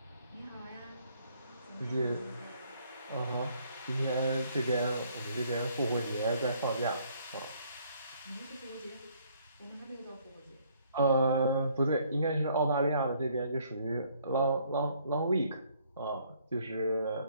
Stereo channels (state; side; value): inverted; both; correlation -0.64